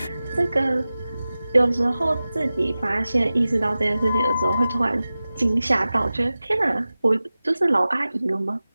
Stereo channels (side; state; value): both; inverted; correlation -0.96